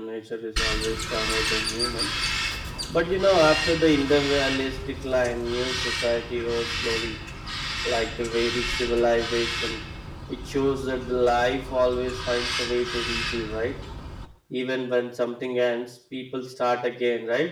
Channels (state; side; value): identical; both; correlation 1.00